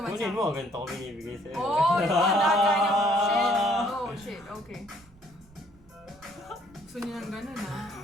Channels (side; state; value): right; noise; rumble, 27 dB below the sound